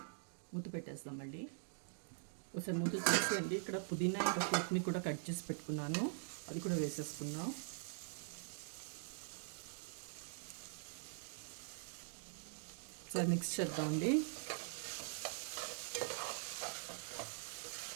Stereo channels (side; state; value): left; silent; digital silence